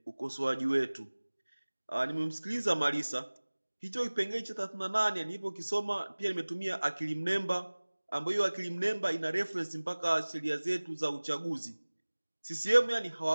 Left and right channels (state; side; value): inverted; both; correlation -1.00